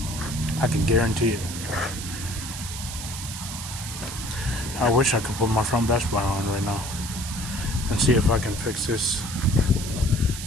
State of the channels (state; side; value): noise; right; hiss, 8 dB below the sound